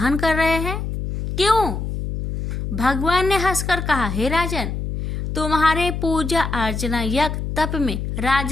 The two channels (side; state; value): left; noise; hum, 4 dB below the sound